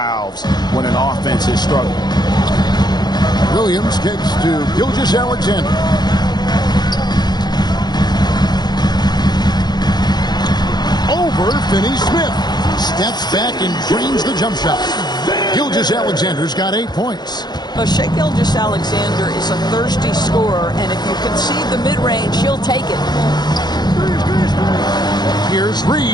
when an offense is struggling. Williams kicks to Gilgeous-Alexander. Over Finney-Smith. Steps back and drains the jump shot. Gilgeous-Alexander's got 8 points. Well, Shai Gilgeous-Alexander is a thirsty scorer, and if you concede the mid-range, he'll take it. Here's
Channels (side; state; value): right; late; 0.20 ms